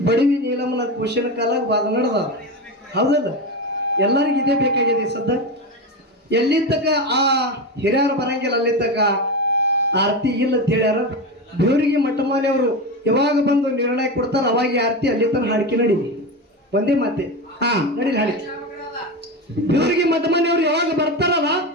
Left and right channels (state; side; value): normal; both; correlation 0.19